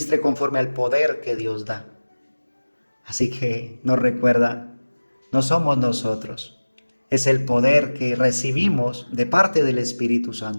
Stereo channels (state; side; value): inverted; both; correlation -1.00